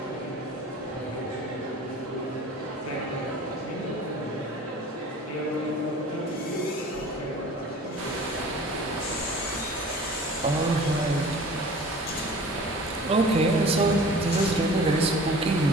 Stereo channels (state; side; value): normal; both; correlation 0.43